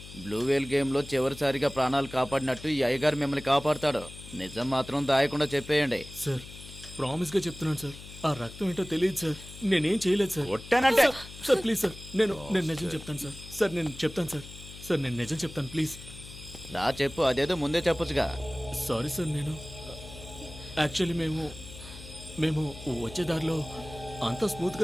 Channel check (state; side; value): noise; left; hum, 15 dB below the sound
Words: బ్లూ వేల్ గేమ్లో చివరిసారిగా ప్రాణాలు కాపాడినట్టు ఈ అయ్యగారు మిమ్మల్ని కాపాడుతాడు. నిజం మాత్రం దాయకుండా చెప్పేయండి. సార్ ప్రామిస్గా చెప్తున్నాను సార్. ఆ రక్తం ఏంటో తెలియదు సార్. నేనేం చేయలేదు సార్. కొట్టానంటే సార్ ప్లీజ్ సార్. నేను నిజం చెప్తాను సార్. సార్ నేను చెప్తాను సార్. సార్ నేను నిజం చెప్తాను ప్లీజ్. రా చెప్పు, అదేదో ముందే చెప్పొచ్చుగా. Sorry sir. నేను యాక్చువల్లీ మేము వచ్చే దారిలో అంతా